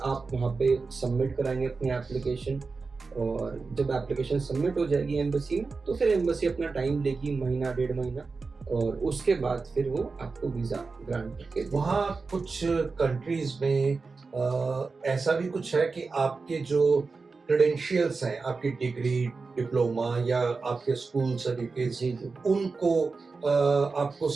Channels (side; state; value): left; quieter; 4.3 dB